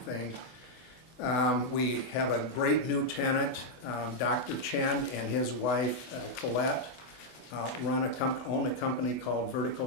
We have a great new tenant, Dr. Chen and his wife Colette own a company called Vertical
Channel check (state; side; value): late; right; 24 ms